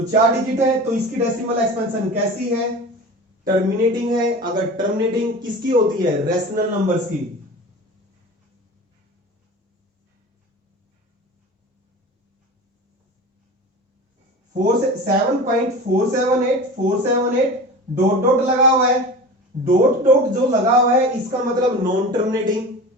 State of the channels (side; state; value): both; normal; correlation 0.34